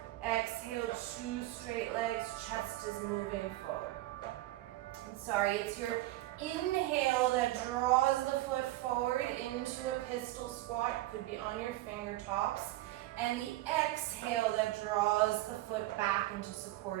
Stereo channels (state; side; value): quieter; left; 16.9 dB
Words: Exhale, two straight legs, chest is moving forward. Sorry, it's your inhale that draws the foot forward into a pistol squat, could be on your fingertops, and the exhale that draws the foot back into